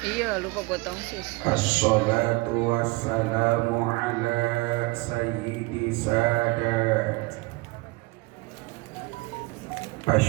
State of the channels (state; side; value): quieter; left; 24.3 dB